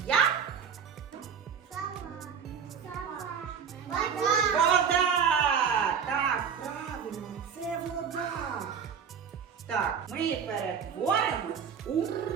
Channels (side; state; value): left; quieter; 7.1 dB